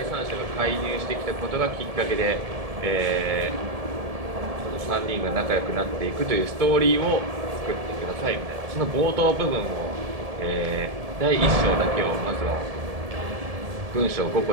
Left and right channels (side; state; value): left; late; 1.7 ms